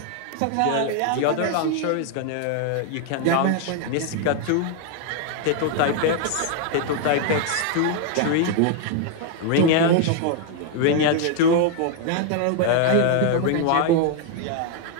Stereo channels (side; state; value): both; different; correlation 0.00